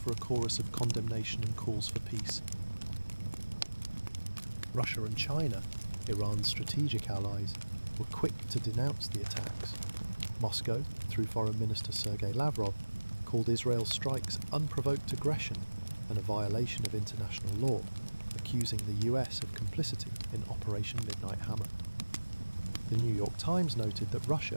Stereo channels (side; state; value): both; inverted; correlation -1.00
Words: a chorus of condemnation and calls for peace. Russia and China, Iran's strategic allies, were quick to denounce the attacks. Moscow, through Foreign Minister Sergei Lavrov, called Israel's strikes unprovoked aggression and a violation of international law, accusing the US of complicity in Operation Midnight Hammer. The New York Times noted that